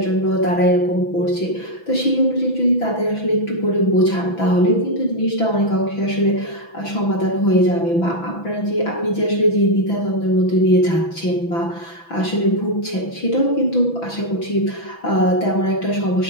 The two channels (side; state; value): right; late; 6.0 ms